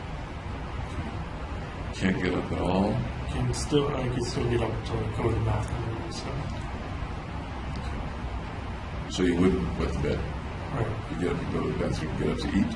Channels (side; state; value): both; identical; correlation 1.00